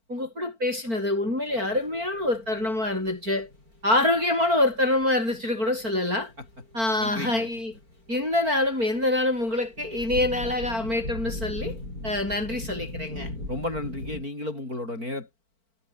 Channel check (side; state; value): left; late; 4.4 ms